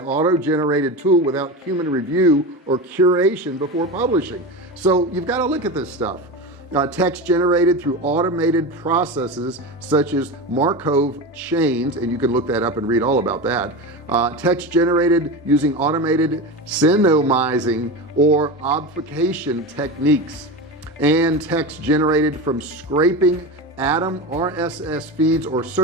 auto-generated tool without human review or curation before publishing. So you've got to look at this stuff. Text generated through automated processes such as Markov chains, and you can look that up and read all about that. Text generated using automated synonymizing or obfuscation techniques, and text generated from scraping Atom RSS feeds or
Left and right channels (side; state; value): both; normal; correlation 0.23